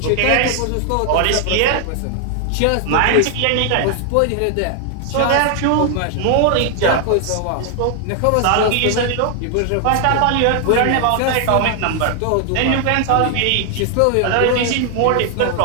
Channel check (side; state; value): both; different; correlation 0.00